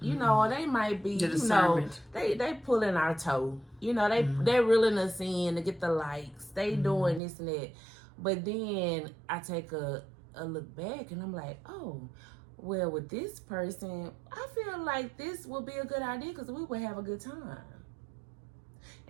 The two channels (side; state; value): left; drops out; at 7.2 s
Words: or they might be, they pulling our toe, they're reeling us in to get the likes, they doing this and that. But then I take a look back, and I'm like, oh, well, with this person, I feel like this would be a good idea because we would have a good time.